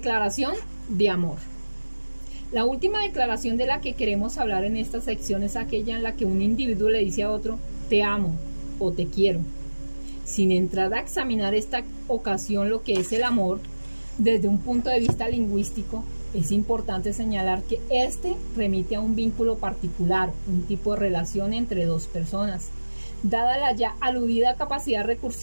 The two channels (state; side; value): inverted; both; correlation -1.00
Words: de amor. La última declaración de la que queremos hablar en esta sección es aquella en la que un individuo le dice a otro, te amo o te quiero. Sin entrar a examinar esta ocasión lo que es el amor, desde un punto de vista lingüístico, es importante señalar que este remite a un vínculo particular, un tipo de relación entre dos personas. Dada la ya aludida capacidad